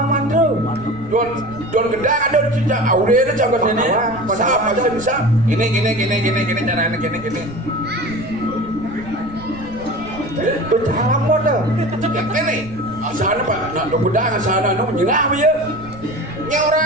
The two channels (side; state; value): right; noise; rumble, 18 dB below the sound